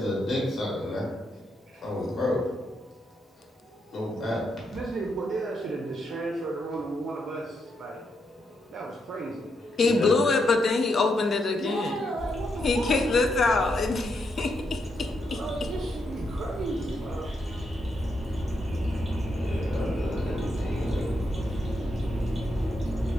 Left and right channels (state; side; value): normal; both; correlation 0.81